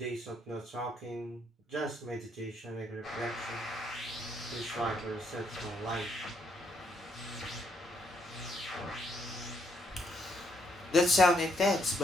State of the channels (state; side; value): normal; both; correlation 0.73